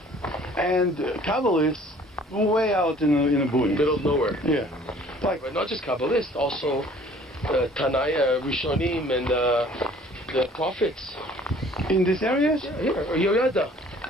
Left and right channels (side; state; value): both; normal; correlation 0.53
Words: And Kabbalists, way out in the boonies. Middle of nowhere. Yeah. But not just Kabbalists, also Tanaya, Rishonim, and the prophets. In these areas? Yeah, here. Yoyada.